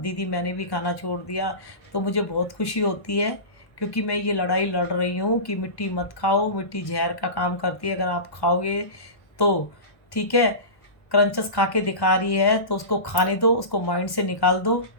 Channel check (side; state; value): right; late; 1.1 ms